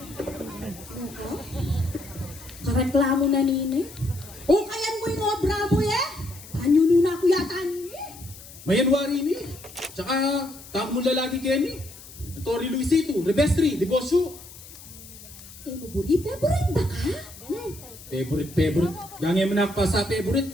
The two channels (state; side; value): noise; left; hiss, 18 dB below the sound